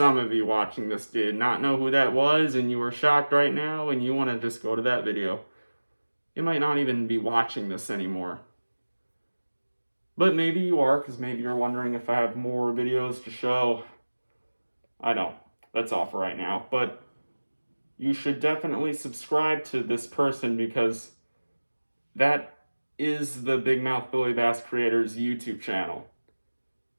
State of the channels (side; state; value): both; inverted; correlation -1.00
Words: of you watching this did not know who that was and you were shocked right now and you want to just go to that video. You might not even be watching this anymore. But maybe you are, because maybe you're wondering if I have more videos to show. I don't. That's all for right now. But you should definitely subscribe to this person because that is the Big Mouth Billy Bass creator's YouTube channel.